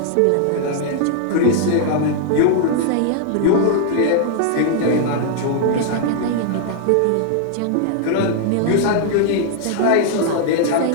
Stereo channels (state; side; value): different; both; correlation -0.01